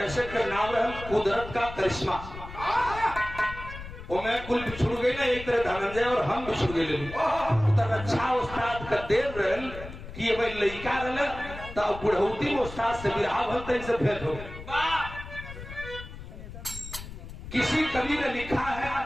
का नाम रहे कुदरत का करिश्मा। वो मैं कुल बिछुड़ गई ना एक तरह धनंजय और हम बिछुड़ गए तो रक्षा उस्ताद का देर रहे कि ये भाई लड़का रहे तो बुढ़ौती में उस्ताद से बिरहा भलते इनसे भेंट हो। किसी कवि ने लिखा है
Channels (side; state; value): left; noise; rumble, 12 dB below the sound